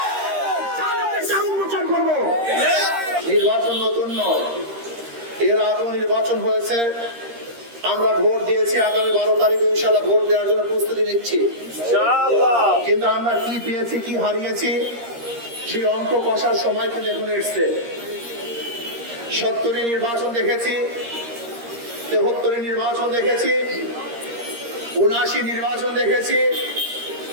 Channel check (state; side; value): late; left; 13 ms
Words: জালেমদের চেহারা উন্মোচন করবো। নির্বাচন নতুন নয়, এর আগেও নির্বাচন হয়েছে, আমরা ভোট দিয়েছি। আগামী 12 তারিখে ইনশাআল্লাহ ভোট দেওয়ার জন্য প্রস্তুতি নিচ্ছি কিন্তু আমরা কি পেয়েছি কি হারিয়েছি সেই অঙ্ক কষার সময় কিন্তু এখন এসছে। 70 নির্বাচন দেখেছি, 73 নির্বাচন দেখেছি, 79 নির্বাচন দেখেছি,